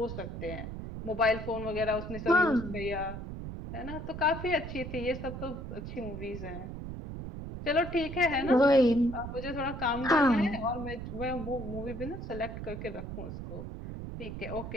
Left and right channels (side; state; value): right; noise; rumble, 8 dB below the sound